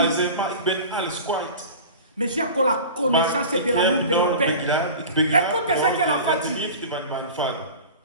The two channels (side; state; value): both; inverted; correlation -0.36